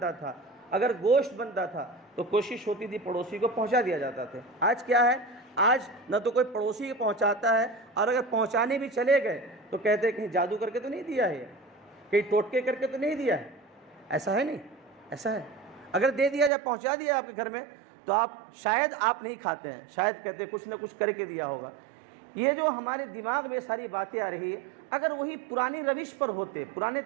تھا، اگر گوشت بنتا تھا تو کوشش ہوتی تھی پڑوسی کو پہنچا دیا جاتا تھا۔ آج کیا ہے؟ آج نہ تو کوئی پڑوسی کو پہنچاتا ہے، اور اگر پہنچانے بھی چلے گئے تو کہتے ہیں کہیں جادو کر کے تو نہیں دیا ہے، کہیں ٹوٹکے کر کے تو نہیں دیا ہے۔ ایسا ہے نہیں، ایسا ہے۔ اگر دے دیا جائے، پہنچا دیا آپ کے گھر میں، تو شاید آپ نہیں کھاتے ہیں، شاید کہتے ہیں کچھ نہ کچھ کر کے دیا ہوگا۔ یہ جو ہمارے دماغ میں ساری باتیں آ رہی ہے، اگر وہی پرانی روش پر ہوتے، پرانے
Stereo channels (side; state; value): left; drops out; at 16.5 s